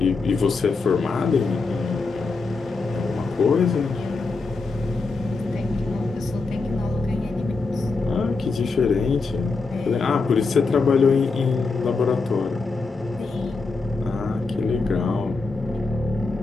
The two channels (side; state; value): right; quieter; 4.1 dB